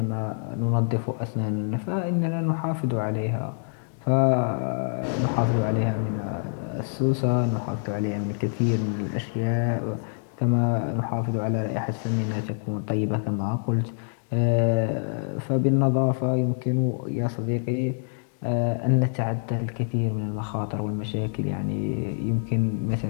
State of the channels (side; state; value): right; silent; digital silence